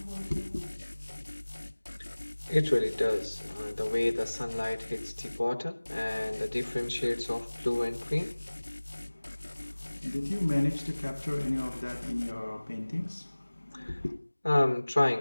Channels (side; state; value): both; inverted; correlation -1.00